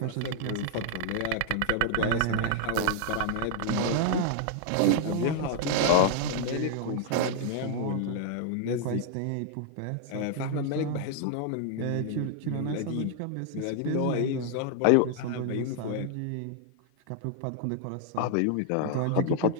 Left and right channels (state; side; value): different; both; correlation 0.00